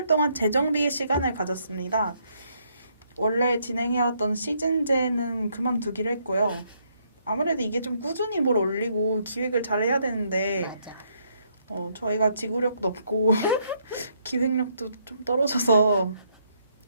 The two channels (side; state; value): both; inverted; correlation -0.72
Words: 동안 재정비의 시간을 가졌습니다. 원래 진행해왔던 시즌제는 그만두기로 했고요. 아무래도 이게 좀 꾸준히 뭘 올리고 기획을 잘 해야 되는데 맞아. 저희가 지구력도 없고 기획력도 좀 떨어져서